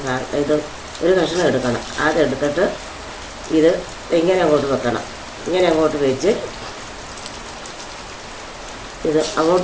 കഷ്ണം എടുക്കണം. അതെടുത്തിട്ട് ഇത് ഇങ്ങനെ അങ്ങോട്ട് വെക്കണം. ഇങ്ങനെ അങ്ങോട്ട് വെച്ച് ഇത്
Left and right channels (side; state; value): both; identical; correlation 1.00